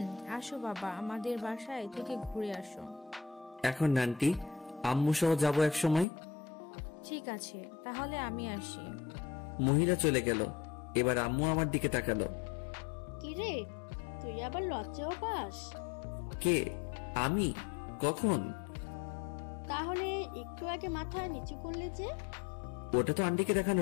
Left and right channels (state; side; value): drops out; right; at 6.1 s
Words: আসো বাবা, আমাদের বাসায় থেকে ঘুরে আসো। এখন আন্টি, আম্মু সহ যাবো এক সময়। ঠিক আছে, তাহলে আমি আসি। মহিলা চলে গেল। এবার আম্মু আমার দিকে তাকালো। কিরে, তুই আবার লজ্জাও পাস? কে? আমি? কখন? তাহলে একটু আগে মাথা নিচু করলে যে? ওটা তো আন্টিকে